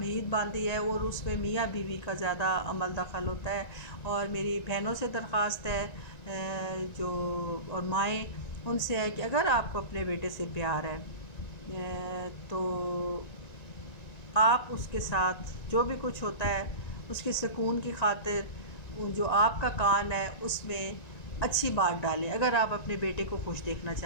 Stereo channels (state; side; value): late; right; 1.9 ms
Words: باندھی ہے اور اس میں میاں بیوی کا زیادہ عمل دخل ہوتا ہے، اور میری بہنوں سے درخواست ہے جو اور مائیں، ان سے ہے کہ اگر آپ کو اپنے بیٹے سے پیار ہے تو آپ اس کے ساتھ جو بھی کچھ ہوتا ہے اس کے سکون کی خاطر جو آپ کا کان ہے اس میں اچھی بات ڈالیں. اگر آپ اپنے بیٹے کو خوش دیکھنا